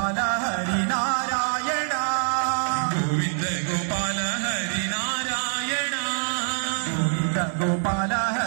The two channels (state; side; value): silent; left; digital silence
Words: ಹರಿನಾರಾಯಣ. ಗೋವಿಂದ ಗೋಪಾಲ ಹರಿನಾರಾಯಣ. ಗೋವಿಂದ ಗೋಪಾಲ